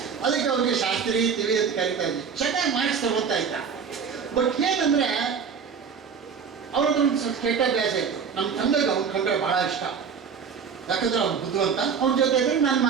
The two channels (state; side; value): quieter; left; 6.4 dB